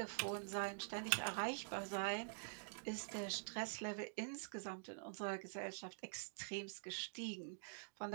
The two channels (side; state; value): left; silent; digital silence